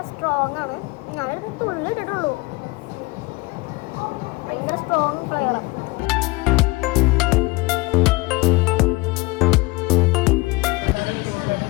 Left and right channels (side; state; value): right; quieter; 23.5 dB